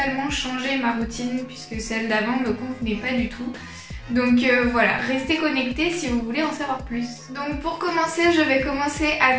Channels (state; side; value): identical; both; correlation 1.00